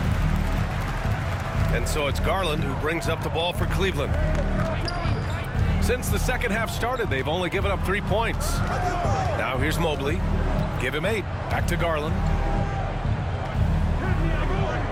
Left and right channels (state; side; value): identical; both; correlation 1.00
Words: And so it's Garland who brings up the ball for Cleveland. Since the second half started, they've only given up 3 points. Now here's Mobley. Give him 8. Back to Garland.